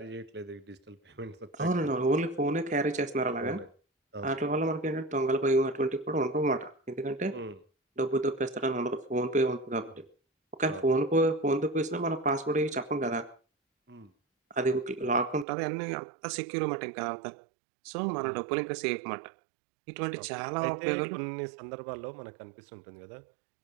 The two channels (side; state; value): left; drops out; at 15.5 s